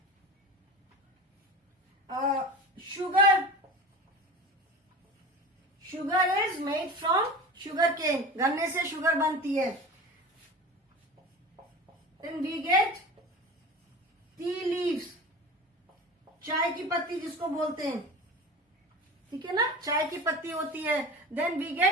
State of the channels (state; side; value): normal; both; correlation 0.33